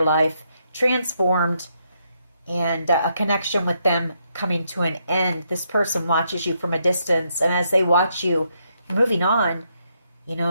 life, transformed, and a connection with them coming to an end. This person watches you from a distance, and as they watch you moving on,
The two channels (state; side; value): inverted; both; correlation -0.77